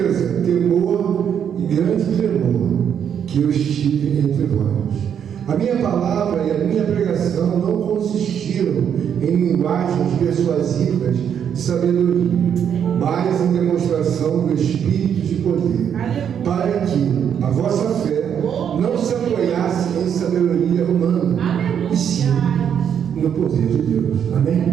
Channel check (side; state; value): left; quieter; 8.4 dB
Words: temor e grande tremor que eu estive entre vós. A minha palavra e a minha pregação não consistiram em linguagens persuasivas de sabedoria, mas em demonstração do Espírito de poder, para que a vossa fé não se apoiasse em sabedoria humana, e sim no poder de Deus.